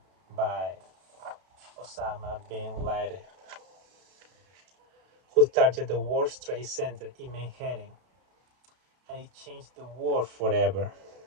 by Osama bin Laden, who targeted the World Trade Center in Manhattan, and it changed the world forever.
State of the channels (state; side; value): late; left; 32 ms